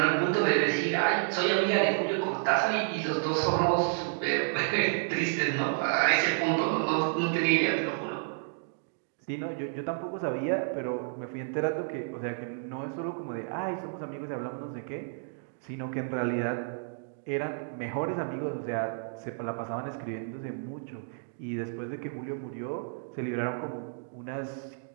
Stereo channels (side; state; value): left; silent; digital silence